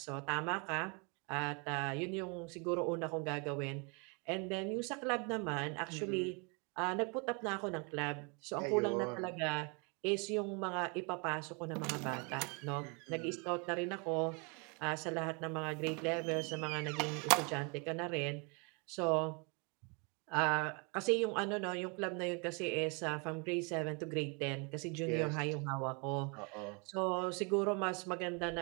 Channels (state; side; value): quieter; left; 33.0 dB